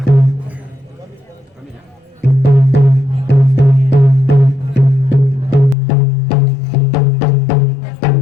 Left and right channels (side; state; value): right; drops out; at 5.8 s